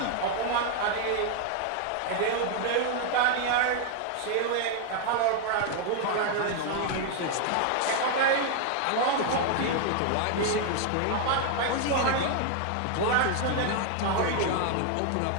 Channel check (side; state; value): both; different; correlation 0.00